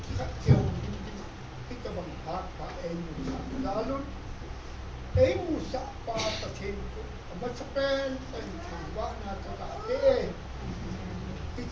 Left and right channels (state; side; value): identical; both; correlation 1.00